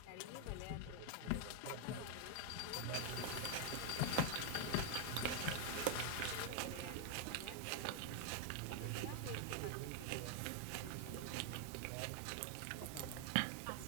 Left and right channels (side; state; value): both; different; correlation 0.01